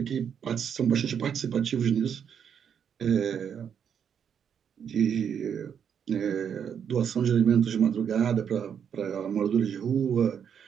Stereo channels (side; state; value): left; quieter; 7.9 dB